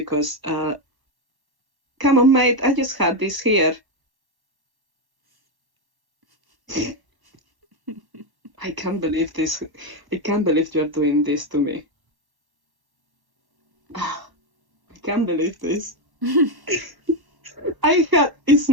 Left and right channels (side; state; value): left; late; 1.1 ms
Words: come on, mate. I just had this here. I can't believe this. I can't believe you're doing this to me. I can't believe this.